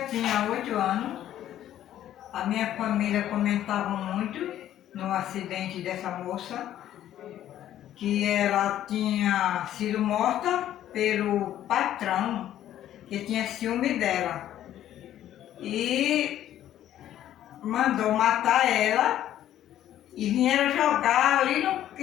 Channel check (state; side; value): quieter; right; 12.0 dB